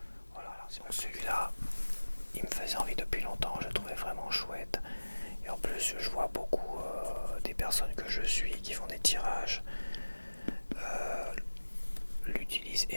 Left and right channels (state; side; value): inverted; both; correlation -1.00